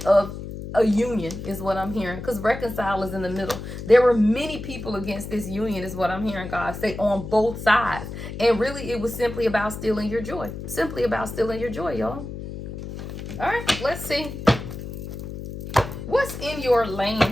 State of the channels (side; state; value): left; noise; hum, 9 dB below the sound